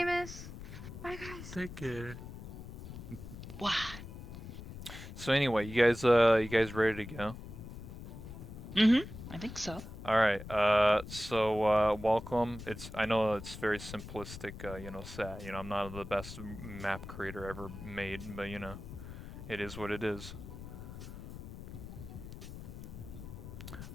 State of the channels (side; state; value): left; noise; rumble, 11 dB below the sound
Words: Bye, guys. Take care. What? So anyway, you guys ready to go? Mm-hmm. I think so. All right. Welcome. I know it's very simplistic. Set. I'm not the best map creator ever made, but it is what it is.